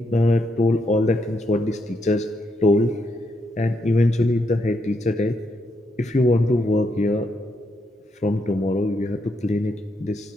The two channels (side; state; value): both; normal; correlation 0.78